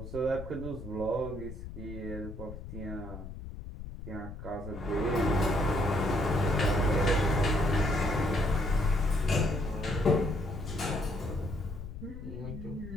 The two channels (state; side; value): noise; left; rumble, 11 dB below the sound